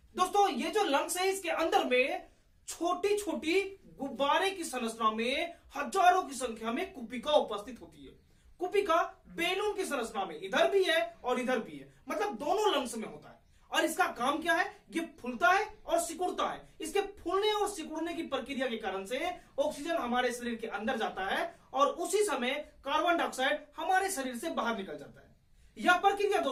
दोस्तों ये जो लंग्स है, इसके अंदर में छोटी छोटी गुब्बारे की संरचना में हजारों की संख्या में कुपिका उपस्थित होती है। कुपिका बैलून की संरचना में इधर भी है और इधर भी है, मतलब दोनों लंग्स में होता है। और इसका काम क्या है? ये फूलता है और सिकुड़ता है। इसके फूलने और सिकुड़ने की प्रक्रिया के कारण से ऑक्सीजन हमारे शरीर के अंदर जाता है और उसी समय कार्बन डाइऑक्साइड हमारे शरीर से बाहर निकल जाता है। यह प्रक्रिया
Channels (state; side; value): identical; both; correlation 1.00